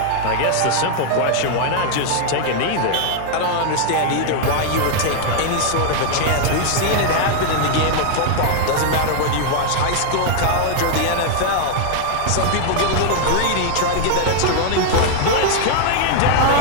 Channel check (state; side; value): different; both; correlation 0.00